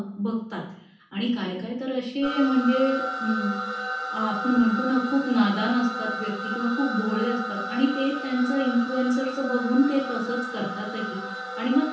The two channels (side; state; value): both; identical; correlation 1.00